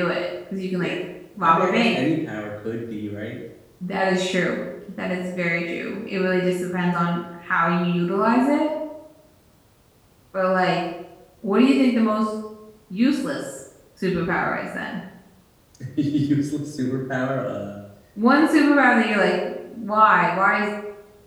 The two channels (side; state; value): both; identical; correlation 1.00